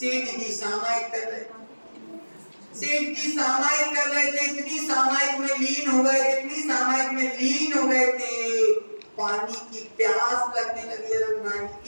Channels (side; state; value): both; inverted; correlation -1.00